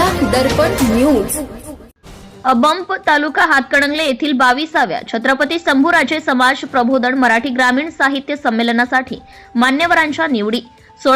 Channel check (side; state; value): both; identical; correlation 1.00